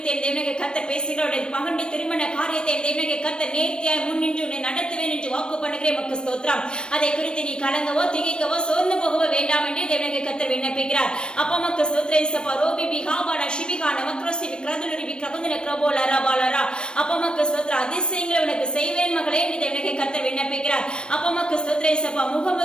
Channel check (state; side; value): late; right; 0.053 ms